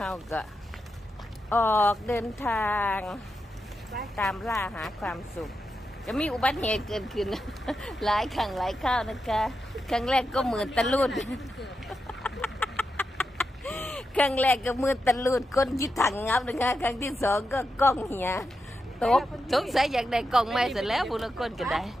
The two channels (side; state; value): both; normal; correlation 0.87